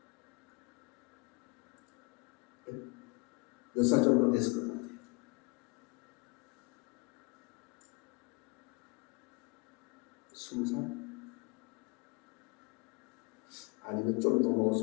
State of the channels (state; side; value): quieter; right; 27.8 dB